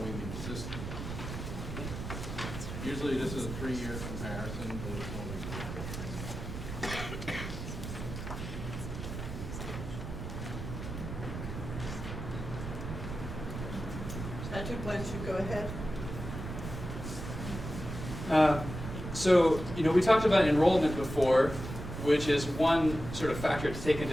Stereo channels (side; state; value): right; noise; rumble, 7 dB below the sound